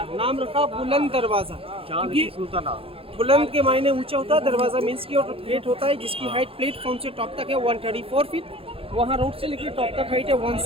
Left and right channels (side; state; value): left; late; 0.27 ms